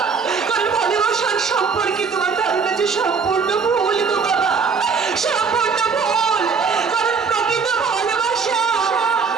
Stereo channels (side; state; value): left; quieter; 5.4 dB